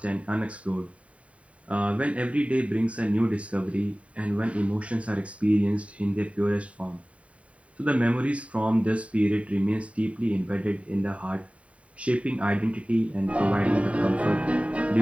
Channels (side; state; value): left; late; 0.065 ms